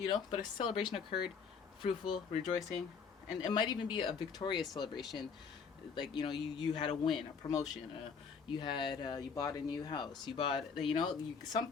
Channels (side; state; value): right; quieter; 5.9 dB